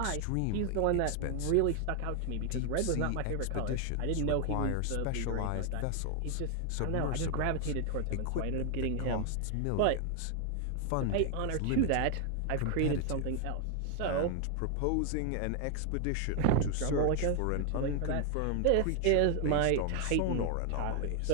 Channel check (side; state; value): both; different; correlation 0.00